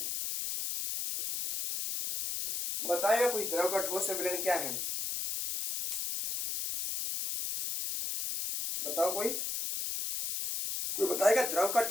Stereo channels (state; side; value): noise; left; hiss, 3 dB below the sound